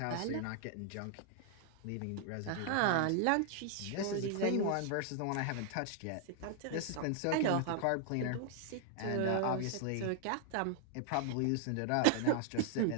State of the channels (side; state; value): both; different; correlation 0.00